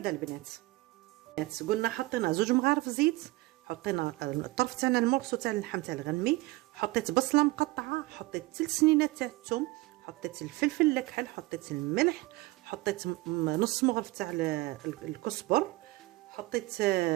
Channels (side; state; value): left; quieter; 20.6 dB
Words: البنات. قلنا حطينا 2 مغارف زيت، حطينا الطرف تاعنا المورسو تاع اللحم تاع الغنمي، حطيت بصله مقطعه، حطيت 3 سنينات تاع الثوم، حطيت الفلفل الكحل، حطيت الملح، حطيت نص مغرف تاع الكزبر، حطيت